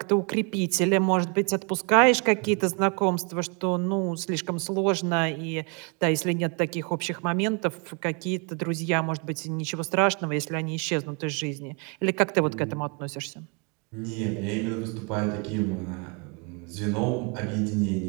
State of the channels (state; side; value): quieter; left; 35.1 dB